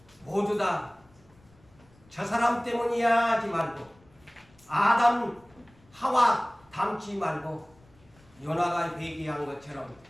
모두 다 저 사람 때문이야 하지 말고 아담 하와 닮지 말고 요나가 회개한 것처럼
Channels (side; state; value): left; noise; rumble, 29 dB below the sound